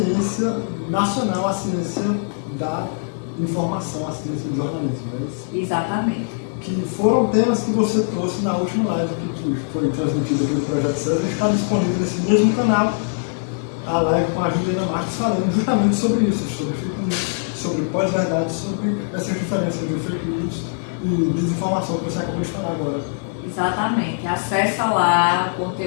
nacional, a ciência da informação, a ciência do jornalismo, não é isso? Exatamente. Que foram temas que você trouxe na última live que foi transmitida pelo Projeto César, e está disponível nesse mesmo canal, a live com a Juliana Marques, falando justamente sobre isso, sobre fake news, sobre pós-verdade, sobre essas diferenças de fake news e desinformação que você acabou de falar agora. Exatamente. Acessa lá, o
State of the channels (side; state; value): right; silent; digital silence